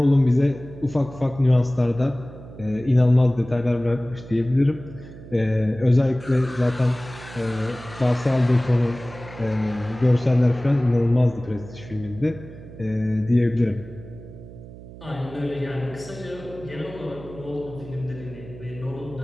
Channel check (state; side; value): noise; right; hum, 16 dB below the sound